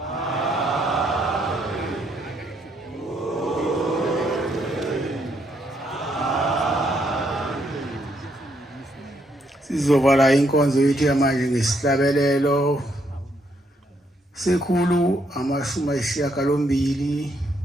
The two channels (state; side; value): normal; both; correlation 0.74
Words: Sizovala inkonzo yethu yamanje ngesihlabelelo sekhulu